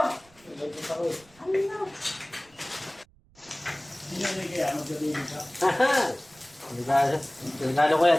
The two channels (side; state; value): right; noise; rumble, 30 dB below the sound